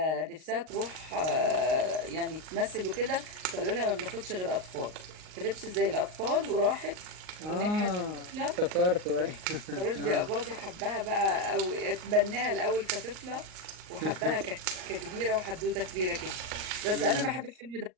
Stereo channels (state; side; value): late; left; 38 ms